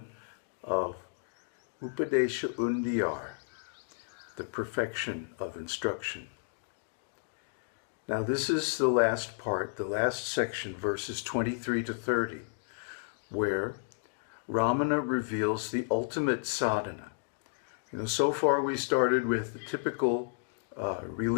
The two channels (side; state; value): right; silent; digital silence